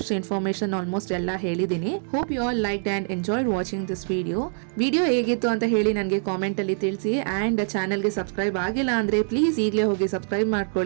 ಇನ್ಫಾರ್ಮೇಷನ್ ಆಲ್ಮೋಸ್ಟ್ ಎಲ್ಲ ಹೇಳಿದ್ದೀನಿ. Hope you all like and enjoyed watching this video ಹೇಗಿತ್ತು ಅಂತ ಹೇಳಿ ನನಗೆ ಕಾಮೆಂಟಲ್ಲಿ ತಿಳಿಸಿ. ಆ್ಯಂಡ್ ಚಾನಲ್ಗೆ ಸಬ್ಸ್ಕ್ರೈಬ್ ಆಗಿಲ್ಲ ಅಂದರೆ ಪ್ಲೀಸ್ ಈಗಲೇ ಹೋಗಿ ಸಬ್ಸ್ಕ್ರೈಬ್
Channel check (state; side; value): silent; left; 61 dB below the other